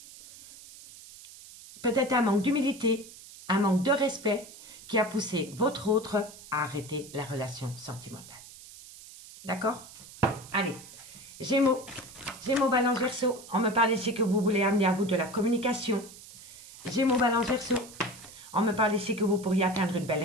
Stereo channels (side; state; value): right; noise; hiss, 18 dB below the sound